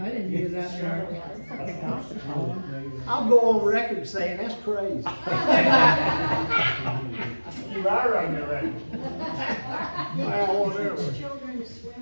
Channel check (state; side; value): inverted; both; correlation -1.00